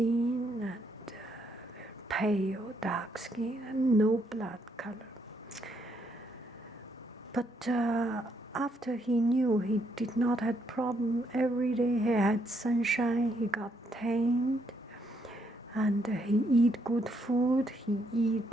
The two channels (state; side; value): normal; both; correlation 0.74